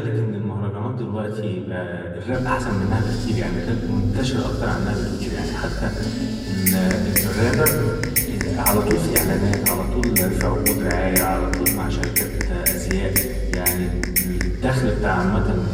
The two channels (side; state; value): both; identical; correlation 1.00